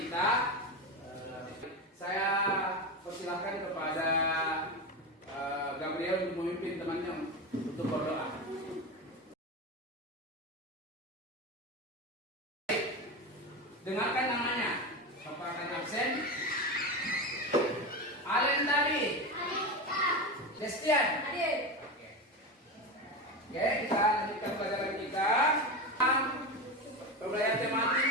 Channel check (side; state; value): both; normal; correlation 0.20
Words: saya persilahkan kepada Gabriel untuk memimpin temannya untuk berdoa. Dengarkan namanya. Bapak akan absen. Alen tadi. Destian. Hadir. Oke, kita lanjutkan pelajaran kita. Pembelajaran tematik.